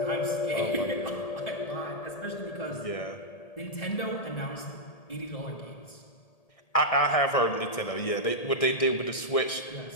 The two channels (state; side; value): late; right; 1.8 ms